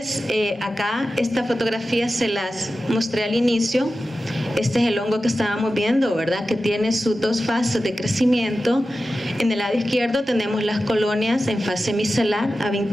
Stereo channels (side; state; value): both; normal; correlation 0.93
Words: acá esta fotografía se las mostré al inicio. Este es el hongo que estábamos viendo, ¿verdad?, que tiene sus dos fases de crecimiento. En el lado izquierdo tenemos las colonias en fase micelar a